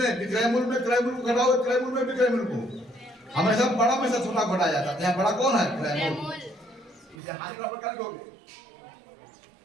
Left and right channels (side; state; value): left; drops out; at 7.2 s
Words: विक्रय मूल्य में क्रय मूल्य को घटाओ, क्रय मूल्य में विक्रय मूल्य को। हमेशा बड़ा में से छोटा घटाया जाता है, यहाँ बड़ा कौन है, क्रय मूल्य। इसे हानि बराबर कर दोगे,